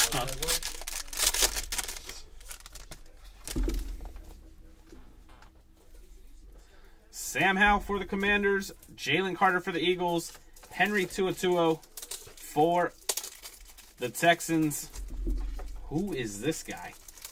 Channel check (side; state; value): both; identical; correlation 1.00